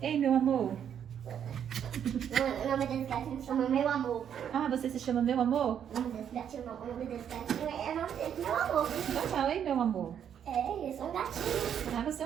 meu amor. O nome desse gatinho se chama Meu Amor. Ah, você se chama meu amor? O nome desse gatinho é o nome desse gatinho, é o nome desse Meu Amor. Então fala, ei, meu amor. É. sou um gatinho. Ah, você é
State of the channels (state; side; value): quieter; left; 8.8 dB